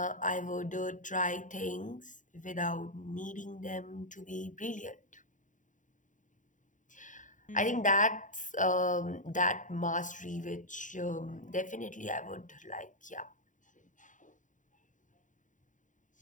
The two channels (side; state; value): right; late; 0.37 ms